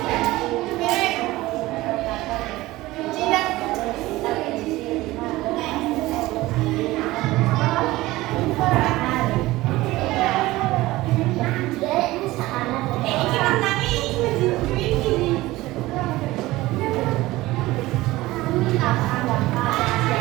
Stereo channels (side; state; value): left; quieter; 18.4 dB